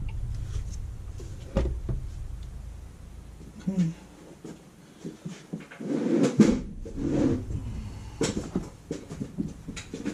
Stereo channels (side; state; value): both; identical; correlation 1.00